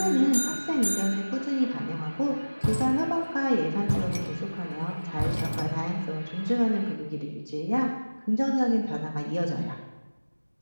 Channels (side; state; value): both; inverted; correlation -1.00